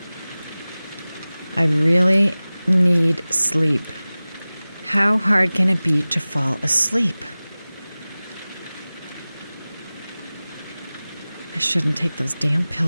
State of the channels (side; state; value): both; inverted; correlation -0.98